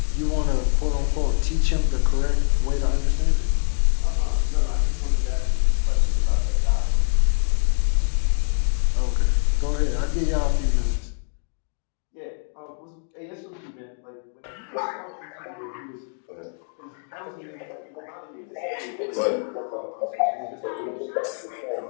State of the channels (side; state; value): right; silent; 58 dB below the other